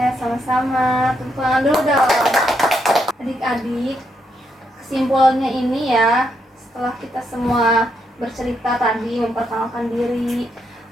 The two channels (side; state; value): both; normal; correlation 0.78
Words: sama-sama. Tepuk tangan dulu dong. Adik-adik, kesimpulannya ini ya, setelah kita semua bercerita tadi, memperkenalkan diri,